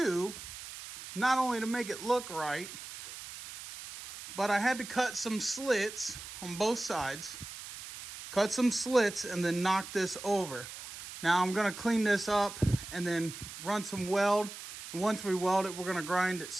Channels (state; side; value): noise; right; hiss, 12 dB below the sound